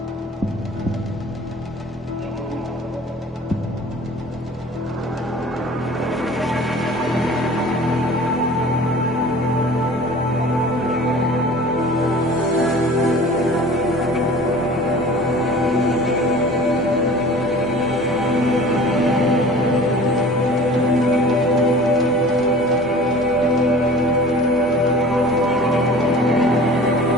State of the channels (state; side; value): normal; both; correlation 0.43